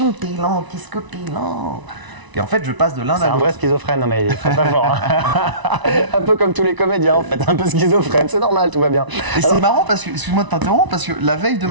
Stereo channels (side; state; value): left; late; 1.0 ms